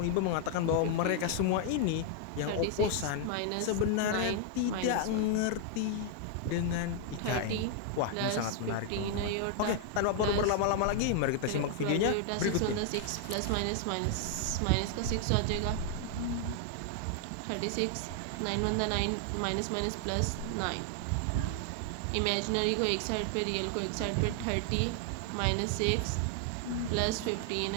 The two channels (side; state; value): both; different; correlation 0.00